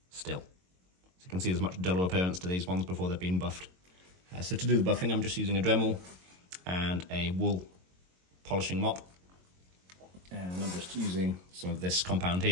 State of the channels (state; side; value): late; left; 22 ms